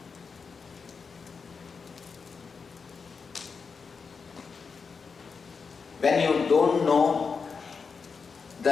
When you don't know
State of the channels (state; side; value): quieter; right; 5.3 dB